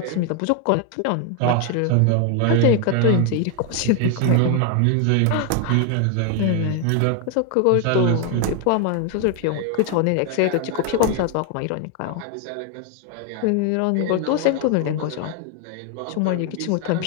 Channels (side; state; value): both; different; correlation 0.01